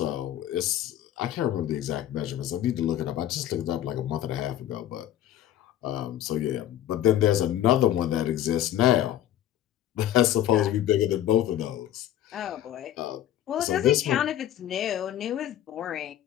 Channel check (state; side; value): quieter; right; 11.9 dB